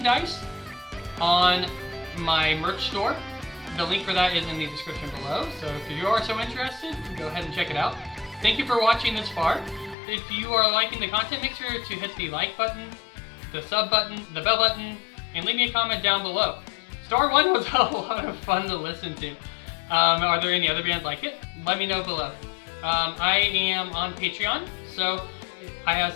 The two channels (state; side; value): drops out; right; at 10.0 s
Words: on my merch store. The link for that is in the description below, so if you are so interested, go ahead and check it out. Thank you for watching this far. If you are liking the content, make sure to hit the like button, the sub button, the bell button, and leave me a comment down below. Star 1 was a lot of fun to listen to. Are there any other bands like it? Let me know below. I am on Patreon, so I have